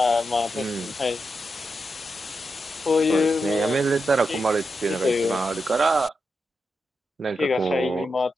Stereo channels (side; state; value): both; normal; correlation 0.86